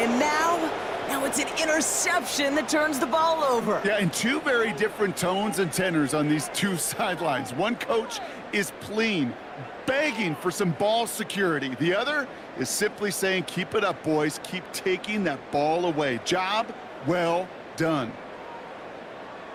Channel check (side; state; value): both; identical; correlation 1.00